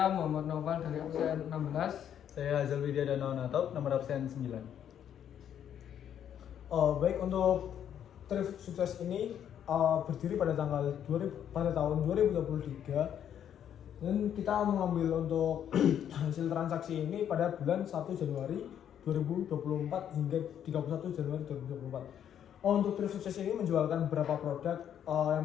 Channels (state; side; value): quieter; right; 9.5 dB